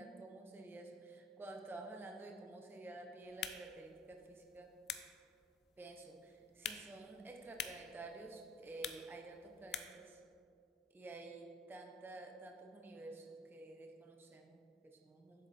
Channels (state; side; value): normal; both; correlation 0.53